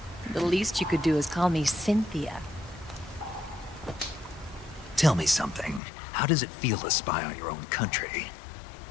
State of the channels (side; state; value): right; drops out; at 5.8 s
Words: The least you could do is call me Cynthia. Tell me something. How does it feel to spy on your own country?